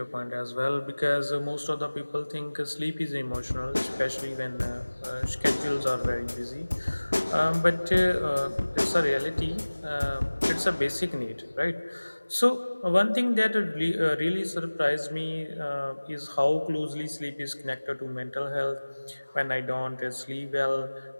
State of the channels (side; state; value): both; inverted; correlation -1.00